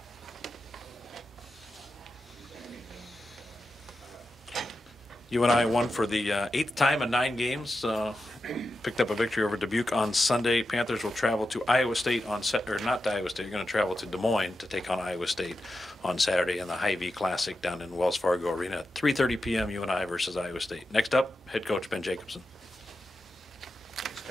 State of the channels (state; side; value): normal; both; correlation 0.90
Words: UNI won for the 8th time in 9 games. Picked up a victory over Dubuque on Sunday. Panthers will travel to Iowa State on not to Iowa State. You're going to travel to Des Moines to take on Iowa State on Saturday in the Hy-Vee Classic down in Wells Fargo Arena at 3:30 p.m. UNI versus Iowa State. Next up, head coach Ben Jacobson. Thanks,